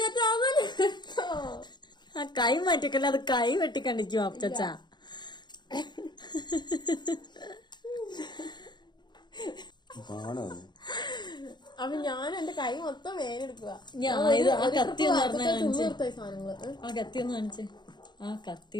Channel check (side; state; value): right; late; 0.21 ms